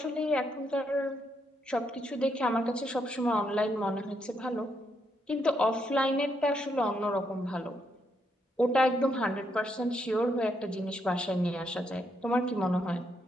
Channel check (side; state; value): both; normal; correlation 0.77